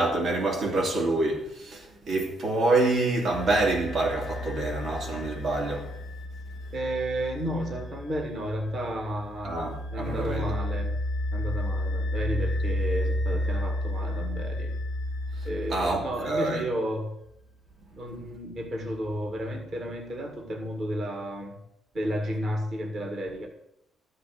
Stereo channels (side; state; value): both; normal; correlation 0.74